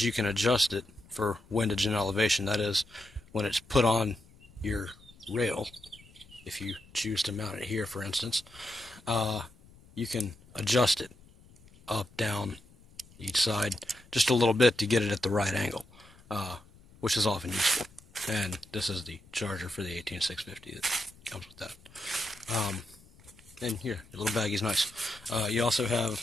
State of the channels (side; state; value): left; noise; rumble, 25 dB below the sound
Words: you can adjust it for windage and elevation. That is, when it's put on your rail, if you choose to mount it here, for instance, you can adjust it up, down, each side, just a little bit to get it at the right angle, which is often useful. And this is the charger for the 18650 that comes with that. And here, your little baggie's nice. You also have